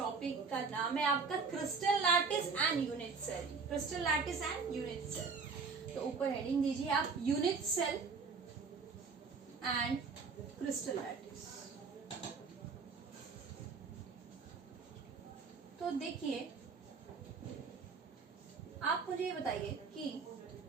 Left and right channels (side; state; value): left; quieter; 4.9 dB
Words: का नाम है आपका crystal lattice and unit cell. Crystal lattice and unit cell. तो ऊपर हेडिंग दीजिए आप, unit cell and crystal lattice. तो देखिए, आप मुझे ये बताइए कि